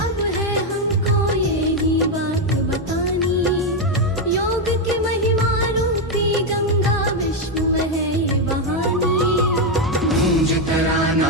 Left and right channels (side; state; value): both; normal; correlation 0.04